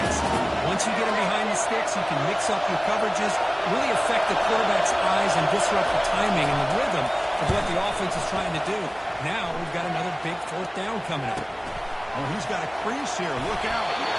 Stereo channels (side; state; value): both; identical; correlation 1.00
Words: Once you get them behind the sticks, you can mix up your coverages, really affect the quarterback's eyes and disrupt the timing and the rhythm of what the offense is trying to do. Now we've got another big fourth down coming up. Oh, he's got a crease here. Look out.